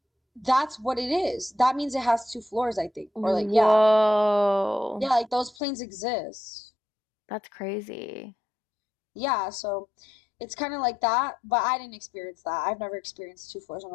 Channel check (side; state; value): right; drops out; at 5.6 s